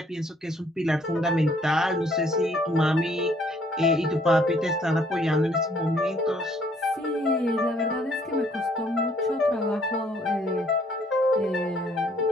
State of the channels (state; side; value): normal; both; correlation 0.63